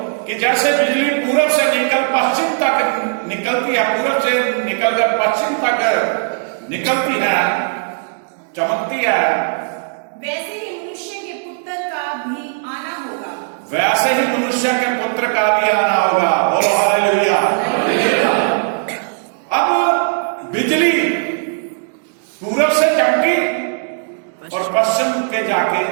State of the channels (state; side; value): silent; left; digital silence